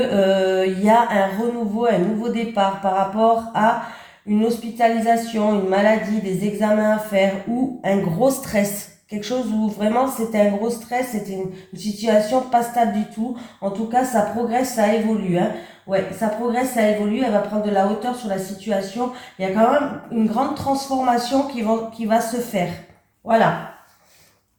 il y a un renouveau, un nouveau départ par rapport à une hospitalisation, une maladie, des examens à faire ou un gros stress. Quelque chose où vraiment c'était un gros stress, c'était une situation pas stable du tout. En tout cas, ça progresse, ça évolue, hein. Ouais, ça progresse, ça évolue, elle va prendre de la hauteur sur la situation. Il y a quand même une grande transformation qui va se faire. Voilà.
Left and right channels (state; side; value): identical; both; correlation 1.00